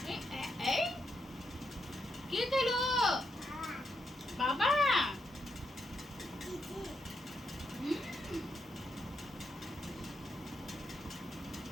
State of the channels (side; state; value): both; normal; correlation 0.81